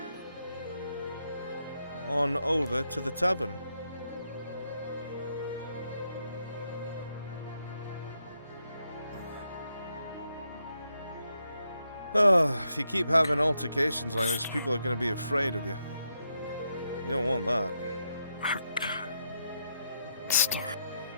on over to the tavern. Oh, if you keep having altercations like this, people are going to be afraid of you. You don't want that.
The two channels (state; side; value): inverted; both; correlation -0.81